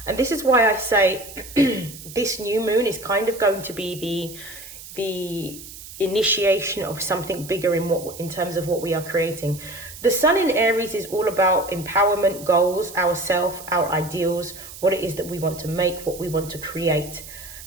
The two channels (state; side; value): noise; right; hiss, 15 dB below the sound